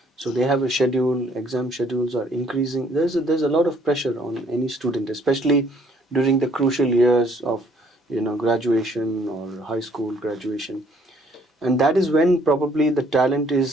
so they have a schedule. Exam schedules are increasing. There's a lot of pressure on any student, especially during the crucial years of graduation or high school graduation, and that is when probably the talent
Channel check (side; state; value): both; normal; correlation 0.62